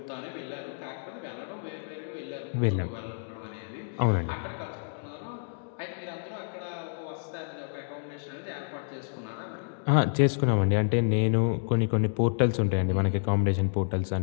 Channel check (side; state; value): right; silent; digital silence